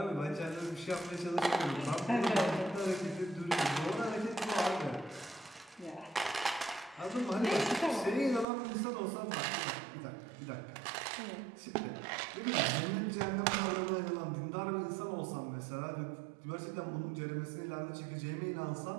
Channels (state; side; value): drops out; left; at 8.5 s